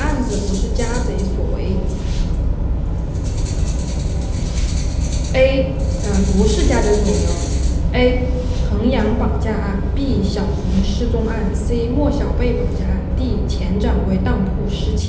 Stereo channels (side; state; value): both; identical; correlation 1.00